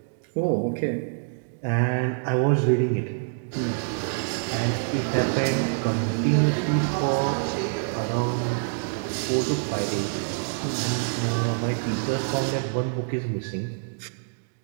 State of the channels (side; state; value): left; silent; digital silence